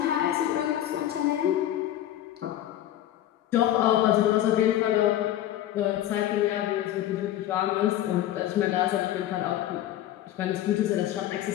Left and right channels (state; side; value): quieter; right; 12.7 dB